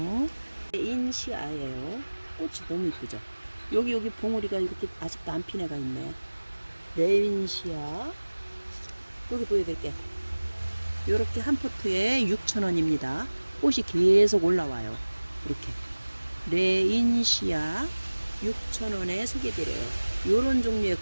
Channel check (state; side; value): inverted; both; correlation -1.00